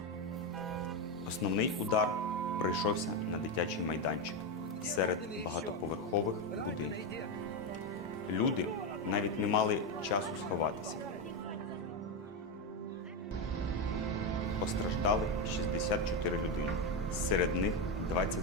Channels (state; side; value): normal; both; correlation 0.10